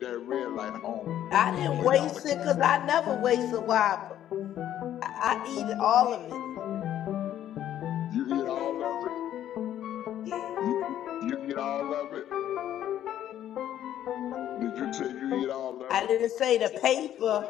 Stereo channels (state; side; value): quieter; right; 11.4 dB